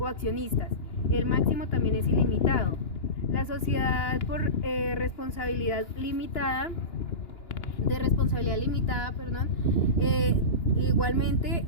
accionistas. El máximo también es ilimitado. La sociedad por responsabilidad limitada, igualmente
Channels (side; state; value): right; late; 2.9 ms